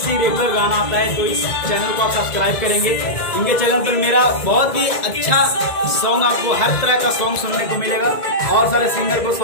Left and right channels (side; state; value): right; late; 2.0 ms